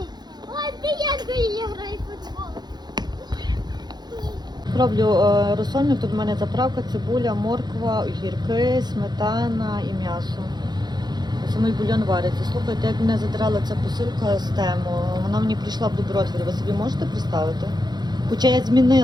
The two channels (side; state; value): left; late; 0.20 ms